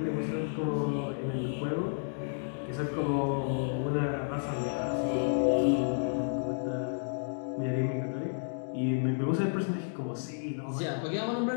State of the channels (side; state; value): right; silent; digital silence